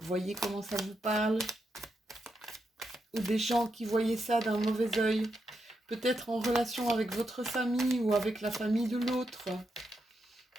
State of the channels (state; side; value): normal; both; correlation 0.83